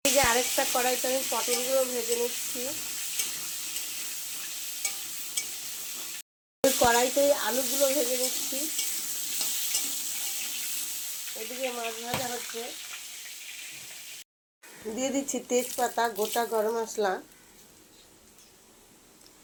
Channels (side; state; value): both; identical; correlation 1.00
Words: এই যে আরেকটা কড়াইতে আমি পটলগুলো ভেজে নিচ্ছি। ওই কড়াইতেই আলুগুলো ভেজে নিচ্ছি। এদিকে মাছ ভাজা হচ্ছে। দিয়ে দিচ্ছি তেজপাতা, গোটা গরম মশলা,